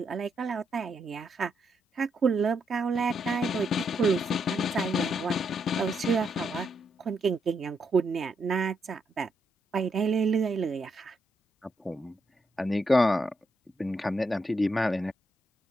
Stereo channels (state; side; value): normal; both; correlation 0.79